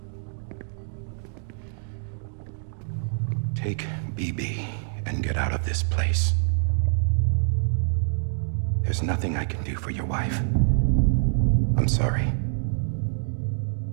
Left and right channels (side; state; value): left; silent; digital silence